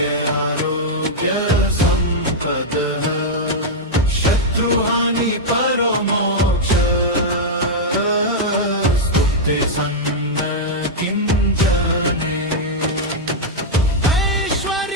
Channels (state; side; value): normal; both; correlation -0.04